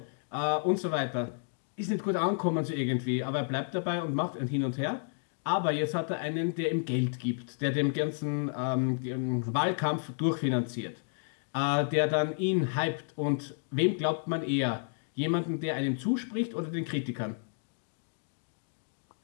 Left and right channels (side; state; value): right; silent; digital silence